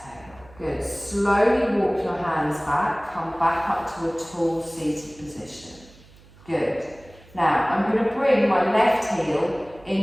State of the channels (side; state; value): right; noise; hum, 24 dB below the sound